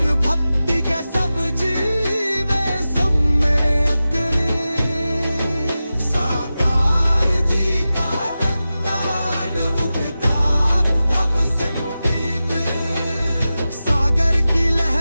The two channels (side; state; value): both; inverted; correlation -0.94